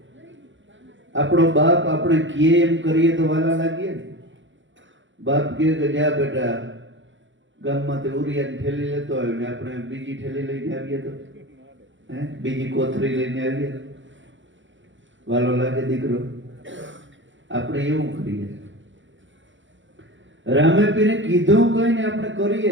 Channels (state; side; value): late; left; 0.55 ms